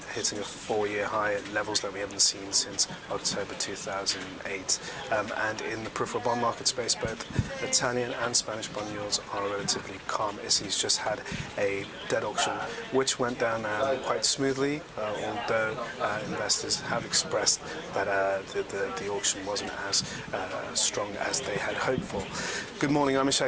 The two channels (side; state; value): both; identical; correlation 1.00